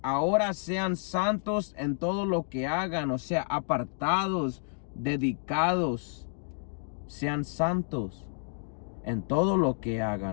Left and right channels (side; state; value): right; silent; digital silence